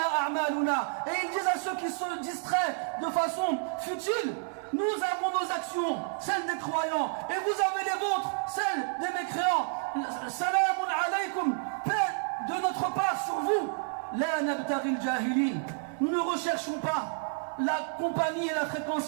et ils disent à ceux qui se distraient de façon futile, nous avons nos actions, celles des croyants, et vous avez les vôtres, celles des mécréants. Salamun alaykum, paix de notre part sur vous. La nabtaghi al-jahilin. Nous ne recherchons pas la compagnie et la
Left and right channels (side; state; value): left; silent; 58 dB below the other